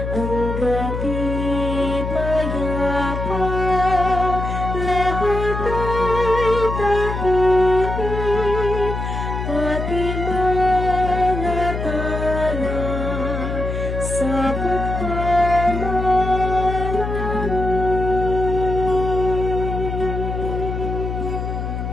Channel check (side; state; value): left; noise; hum, 4 dB below the sound